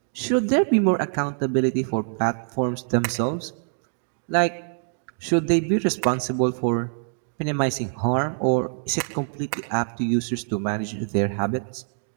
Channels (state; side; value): silent; left; digital silence